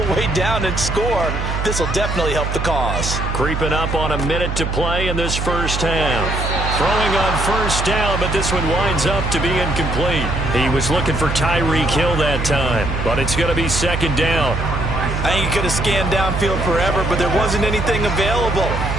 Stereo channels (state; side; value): noise; right; hum, 3 dB below the sound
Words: way down and score. This will definitely help the cause. Creeping up on a minute to play in this first half. Throwing on first down, but this one winds up to be incomplete. He was looking for Tyreek Hill that time, but it's going to be 2nd down. I think he could have scanned downfield forever, but there wasn't anything available.